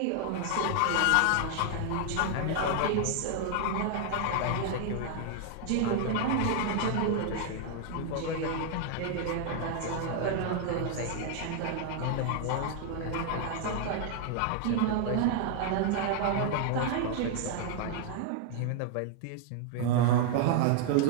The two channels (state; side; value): different; both; correlation 0.00